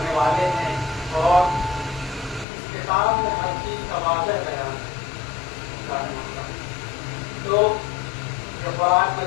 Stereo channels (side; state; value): right; drops out; at 2.5 s